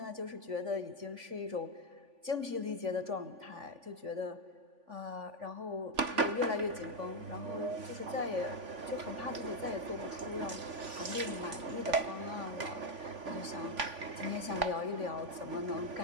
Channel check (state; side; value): late; left; 3.5 ms